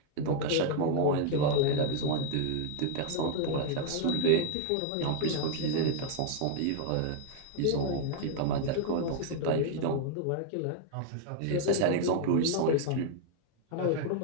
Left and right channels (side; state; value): both; different; correlation 0.00